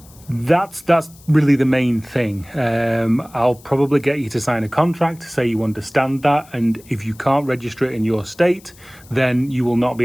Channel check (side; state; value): left; noise; hiss, 25 dB below the sound